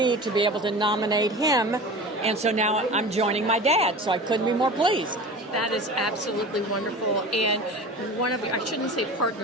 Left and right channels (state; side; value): normal; both; correlation 0.35